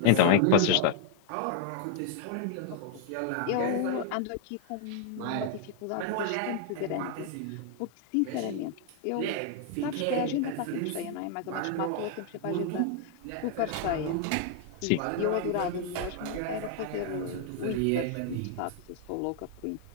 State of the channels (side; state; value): both; different; correlation 0.00